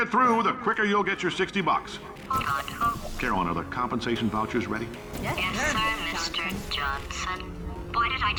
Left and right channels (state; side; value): identical; both; correlation 1.00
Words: through, the quicker you'll get your $60. Hold on. Carolyn, are the compensation vouchers ready? Yes, sir, Mr. Johnson. Why did I